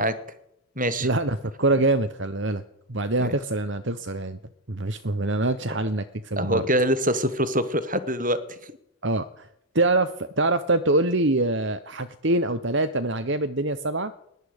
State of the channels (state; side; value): normal; both; correlation 0.01